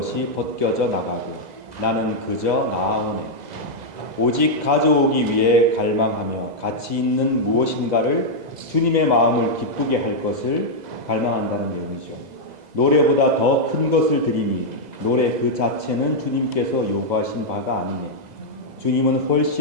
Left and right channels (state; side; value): late; left; 2.0 ms